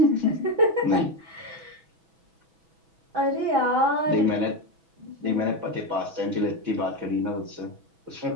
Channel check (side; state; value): left; late; 6.1 ms